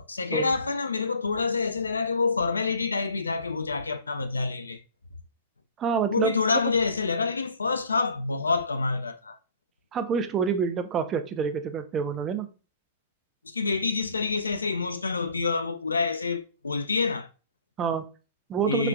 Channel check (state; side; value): inverted; both; correlation -0.51